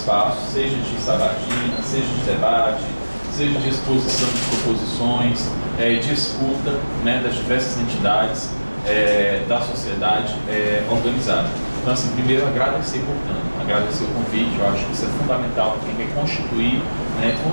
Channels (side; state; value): both; inverted; correlation -1.00